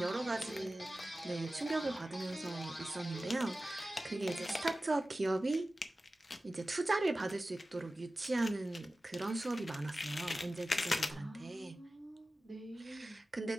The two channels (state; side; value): normal; both; correlation 0.95